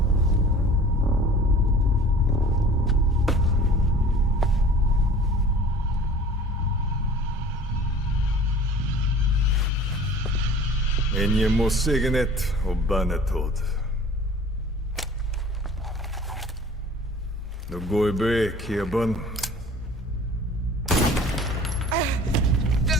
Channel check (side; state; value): both; normal; correlation 0.46